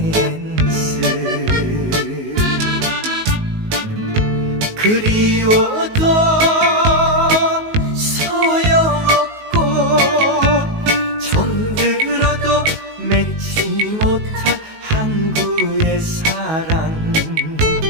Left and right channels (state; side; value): late; left; 19 ms